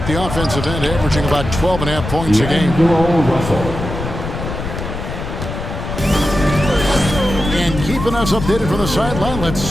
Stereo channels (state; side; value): noise; left; rumble, 6 dB below the sound